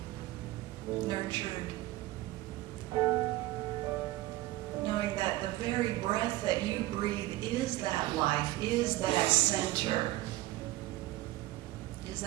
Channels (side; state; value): left; quieter; 17.4 dB